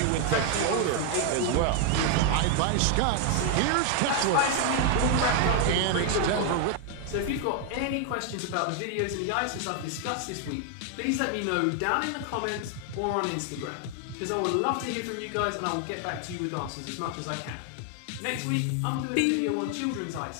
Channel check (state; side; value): different; both; correlation 0.00